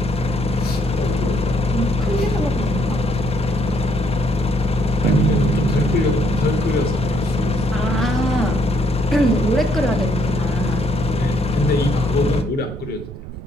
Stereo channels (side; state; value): right; noise; rumble, 12 dB below the sound